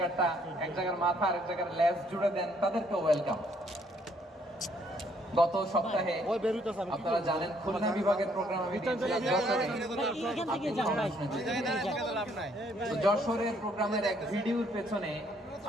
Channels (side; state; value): both; normal; correlation 0.67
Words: জায়গার মাথা আর এক জায়গার লেজ জুড়ে দেন, তাদেরকেও ওয়েলকাম। গত সপ্তাহে আপনারা জানেন খুলনা বিভাগের প্রোগ্রাম আমি যশোরের প্রোগ্রামের এক ভিডিওর পেছনে